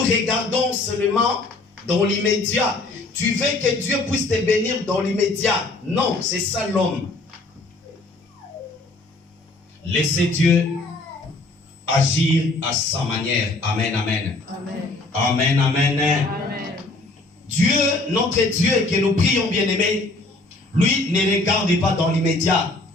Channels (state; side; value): quieter; right; 3.0 dB